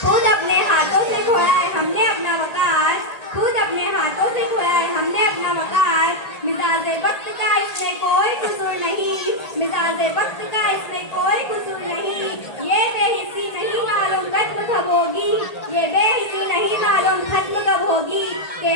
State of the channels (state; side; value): late; right; 1.8 ms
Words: خود اپنے ہاتھوں سے کھویا ہے ہم نے اپنا وقار، خود اپنے ہاتھوں سے کھویا ہے ہم نے اپنا وقار. مزاج وقت کا اس میں کوئی قصور نہیں، مزاج وقت کا اس میں کوئی قصور نہیں. یہ بے حسی نہیں معلوم ختم کب ہوگی، یہ بے حسی نہیں معلوم ختم کب ہوگی